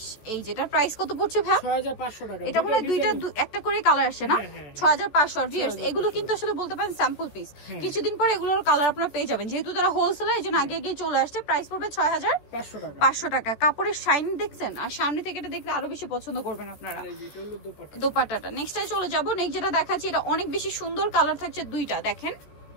এই যেটার প্রাইস কত পড়ছে ভাই? 6500 টাকা। এটা মানে দুইটা একটা করে কালার আসে না? 6500। ভিউয়ার্স এগুলো কিন্তু আসলে বলতে পারেন স্যাম্পল পিস, কিছুদিন পর এগুলোর কালার আপনারা পেয়ে যাবেন, যেহেতু তারা হোলসেলার এজন্য আগে আগে চলে আসছে। প্রাইস পড়বে 6500 টাকা। কাপড়ের শাইনিং দেখছেন, আর সামনে থেকে এটা দেখলে আরো বেশি পছন্দ করবেন আপনারা। দোপাট্টাটা নেক্সটে চলে যাবো। নেক্সট যেটা দেখাচ্ছি, এটা অনেক বেশি সুন্দর কালার থাকছে দুইটা, দেখেন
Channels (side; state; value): right; late; 14 ms